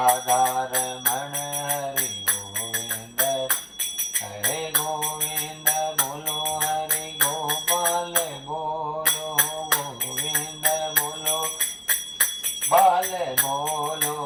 रमण हरि गोविंद हरे गोविंद बोलो हरि गोपाल बोलो गोविंद बोलो बाल बोलो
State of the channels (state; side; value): identical; both; correlation 1.00